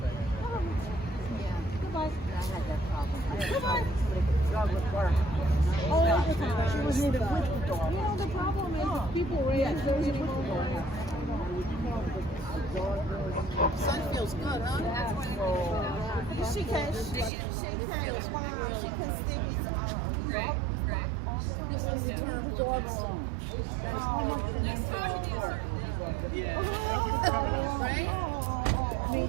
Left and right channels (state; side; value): drops out; left; at 17.3 s